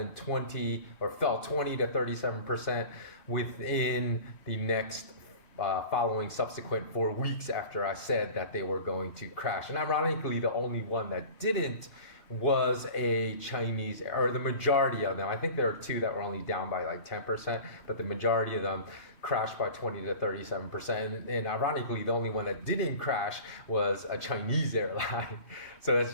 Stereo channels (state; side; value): late; right; 2.5 ms